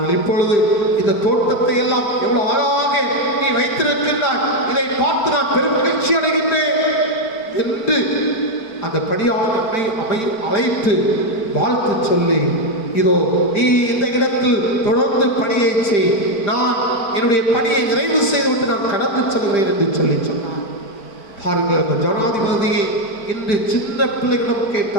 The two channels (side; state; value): right; late; 4.5 ms